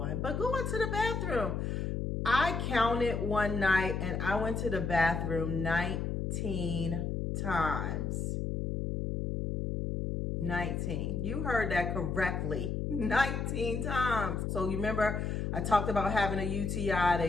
but going to the bathroom. I counted one night and I went to the bathroom 19 times. 19. You heard that correctly. 19 times. So you remember I talked about having a UTI.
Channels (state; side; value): noise; left; hum, 1 dB below the sound